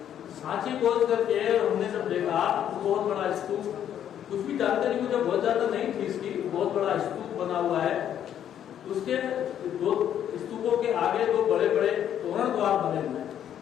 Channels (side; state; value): right; quieter; 10.0 dB